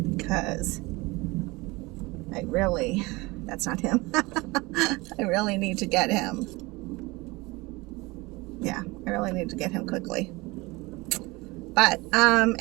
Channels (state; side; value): quieter; left; 23.2 dB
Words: because that's not him. I really need to get him. Yeah, I really need to get him quickly. But